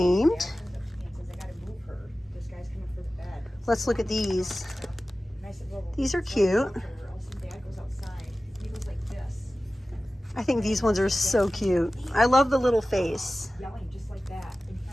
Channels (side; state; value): both; normal; correlation 0.96